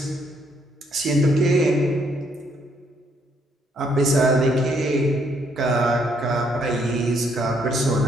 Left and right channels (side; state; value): both; normal; correlation 0.71